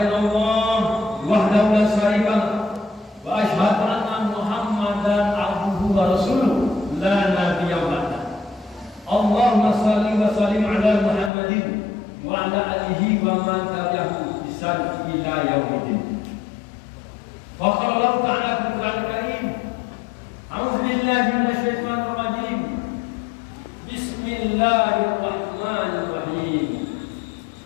wahdahu la syarika lahu wa asyhadu anna Muhammadan abduhu wa rasuluh la nabiyya ba'da. Allahumma shalli wa sallim ala Muhammadin wa ala alihi wa man tabi'ahu bi ihsan ila yaumiddin. Wa qala Allah ta'ala fil Qur'anil Karim, a'udzu billahi minasy syaithanir rajim. Bismillahirrahmanirrahim.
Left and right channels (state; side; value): drops out; right; at 11.3 s